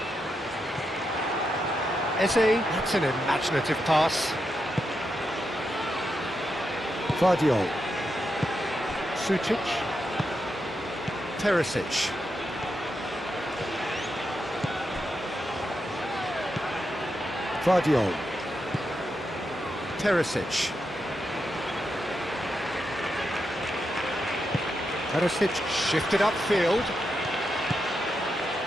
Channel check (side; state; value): both; normal; correlation 0.85